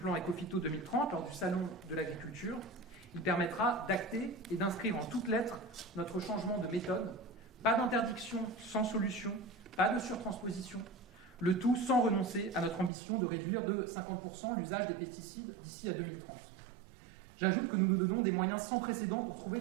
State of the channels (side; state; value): left; drops out; at 12.9 s